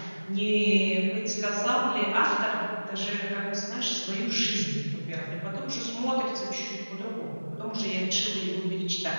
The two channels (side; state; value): both; inverted; correlation -1.00